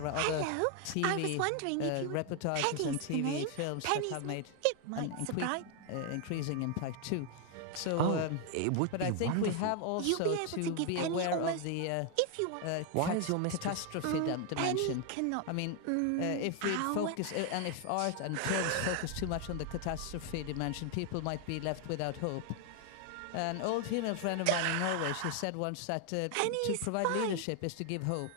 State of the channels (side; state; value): both; different; correlation 0.00